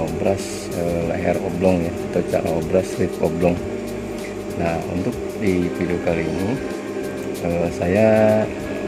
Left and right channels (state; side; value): identical; both; correlation 1.00